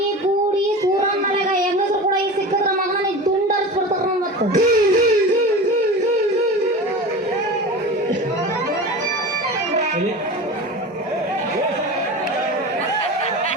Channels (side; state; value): both; normal; correlation 0.31